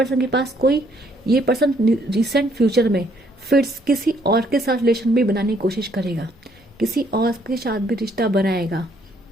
के पास कोई, ये पर्सन रिसेंट फ्यूचर में फिर किसी और के साथ रिलेशन भी बनाने की कोशिश करेगा, किसी और के साथ भी रिश्ता बनाएगा,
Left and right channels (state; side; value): normal; both; correlation 0.67